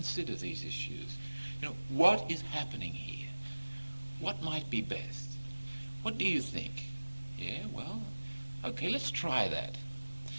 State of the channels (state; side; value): inverted; both; correlation -1.00